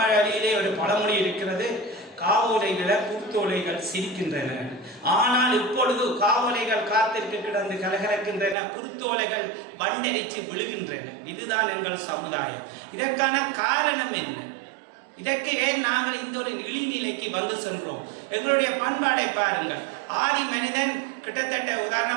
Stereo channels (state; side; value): drops out; left; at 8.6 s